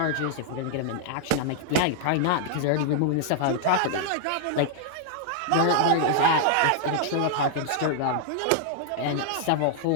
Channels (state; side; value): different; both; correlation -0.01